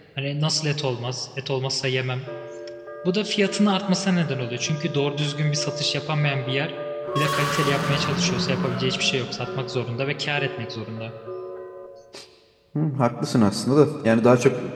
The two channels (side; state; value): both; identical; correlation 1.00